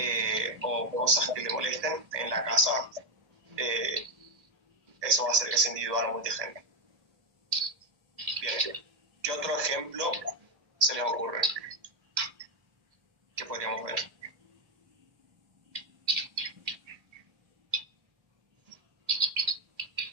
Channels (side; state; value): left; late; 1.8 ms